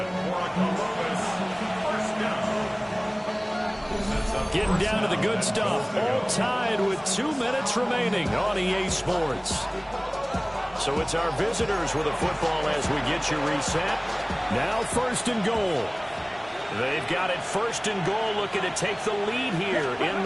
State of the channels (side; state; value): both; identical; correlation 1.00